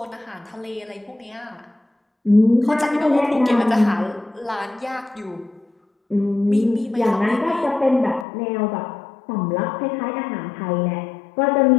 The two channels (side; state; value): right; drops out; at 8.2 s